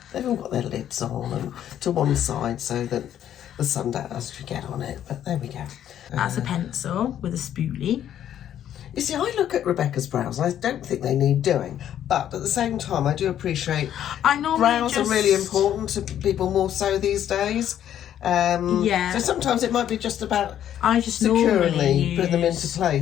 They've all got their lids on and to one side so that the sun doesn't get on it. But there we go. That's a pencil with a spoolie. You see, I look at Rebecca's brows and I don't think they need doing. But at the same time, I do appreciate brows are really important to people more so these days. Yeah. So sometimes it might be just about I just securely put them into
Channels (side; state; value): right; quieter; 10.7 dB